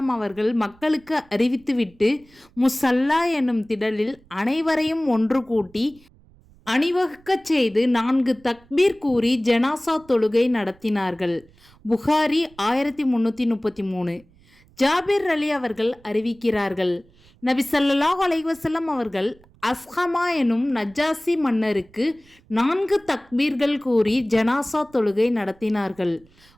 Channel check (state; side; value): noise; right; rumble, 29 dB below the sound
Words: அவர்கள் மக்களுக்கு அறிவித்துவிட்டு முஸல்லா எனும் திடலில் அனைவரையும் ஒன்று கூட்டி அணிவகுக்கச் செய்து 4 தக்பீர் கூறி ஜனாஸா தொழுகை நடத்தினார்கள். புகாரி 1333. ஜாபிர் அலி அவர்கள் அறிவிக்கிறார்கள், நபி ஸல்லல்லாஹு அலைஹி வஸல்லம் அவர்கள் அஸ்ஹமா எனும் நஜ்ஜாசி மன்னருக்கு 4 தக்பீர்கள் கூறி ஜனாஸா தொழுகை நடத்தினார்கள்.